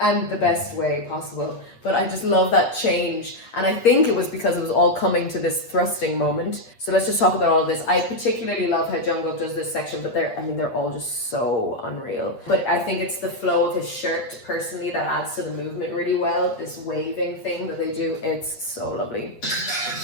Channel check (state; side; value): late; right; 8.6 ms